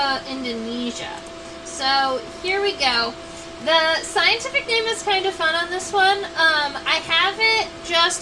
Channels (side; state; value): both; identical; correlation 1.00